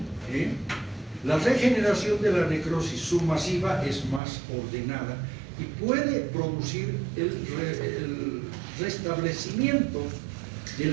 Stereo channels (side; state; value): left; drops out; at 4.2 s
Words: La regeneración de la necrosis submasiva es más ordenada y puede producir el restablecimiento de